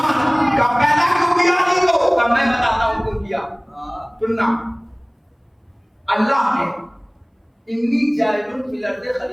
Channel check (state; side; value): identical; both; correlation 1.00